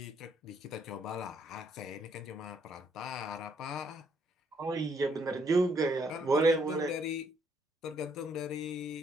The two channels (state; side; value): normal; both; correlation 0.70